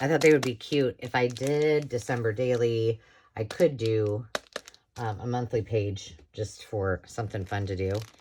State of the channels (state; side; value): identical; both; correlation 1.00